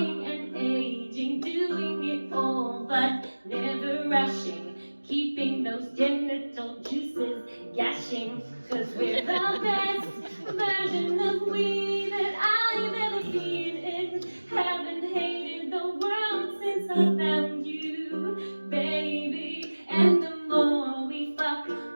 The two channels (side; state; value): both; inverted; correlation -1.00